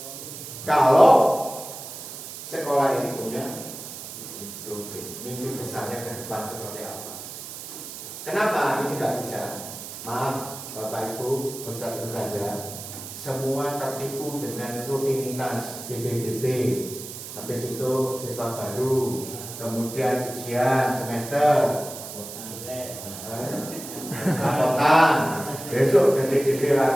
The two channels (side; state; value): right; noise; hiss, 11 dB below the sound